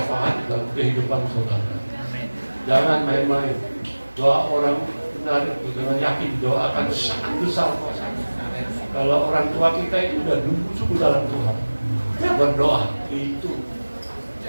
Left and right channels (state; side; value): inverted; both; correlation -1.00